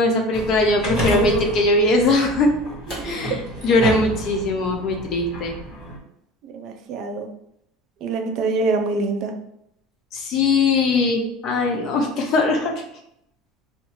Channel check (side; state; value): both; normal; correlation 0.39